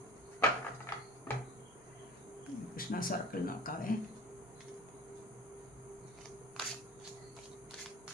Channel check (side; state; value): both; normal; correlation 0.42